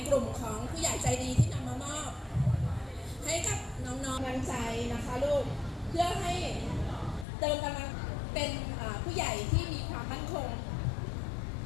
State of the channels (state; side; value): drops out; right; at 7.2 s